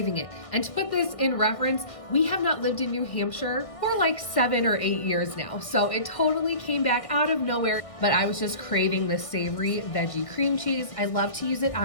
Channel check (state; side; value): late; right; 1.6 ms